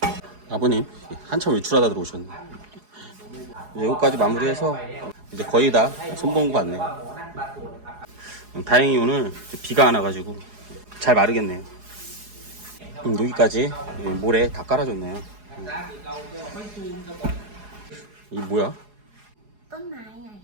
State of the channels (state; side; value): late; left; 4.8 ms